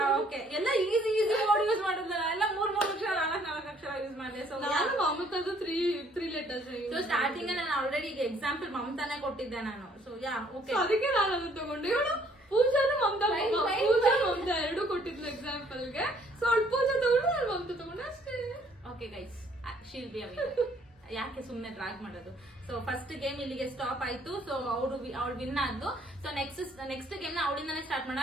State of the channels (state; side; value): normal; both; correlation 0.63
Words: ಓಕೆ, ಎಲ್ಲ ಈಸಿ ವರ್ಡ್ ಯೂಸ್ ಮಾಡಿದ್ರಲ್ಲ, ಎಲ್ಲ 3 ಅಕ್ಷರ 4 ಅಕ್ಷರ ಯೂಸ್ ಮಾಡಿದೆ. ಸೊ ನಾನು ಮಮತಾದು 3 ಲೆಟರ್ಸ್. ಸೊ ಸ್ಟಾರ್ಟಿಂಗ್ ನಾನು ಆಲ್ರೆಡಿ ಈಗ ಎಕ್ಸಾಂಪಲ್ ಮಮತಾನೆ ಕೊಟ್ಟಿದ್ದೆ ನಾನು. ಸೊ ಯಾ ಓಕೆ, ಅದಕ್ಕೆ ನಾನು ಅದನ್ನ ತಗೊಂಡೆ. ಇವಳು ಪೂಜಾನು ಮಮತಾ ಎರಡು ಕೊಟ್ಟಿದ್ಲು ಎಕ್ಸಾಂಪಲ್ ಗೆ. ಸೊ ಅವಳು ಪೂಜಾ ತಗೊಂಡು ನಾನು ಮಮತಾ ತಗೊಂಡೆ ಅಷ್ಟೇ. Okay guys, she'll be a winner. ಯಾಕೆ ಸುಮ್ನೆ ಡ್ರಾಗ್ ಮಾಡೋದು. ಸೊ ಫಸ್ಟ್ ಗೇಮ್ ಇಲ್ಲಿಗೆ ಸ್ಟಾಪ್ ಆಯ್ತು. ಸೊ ಅವಳು ವಿನ್ ಆದ್ಲು. ಸೊ ನೆಕ್ಸ್ಟ್ ಗೇಮ್ ನ ಅವಳಿಂದಾನೆ ಸ್ಟಾರ್ಟ್ ಮಾಡೋಣ.